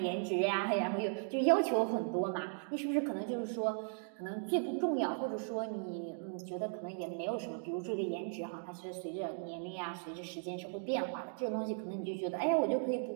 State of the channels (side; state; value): left; silent; digital silence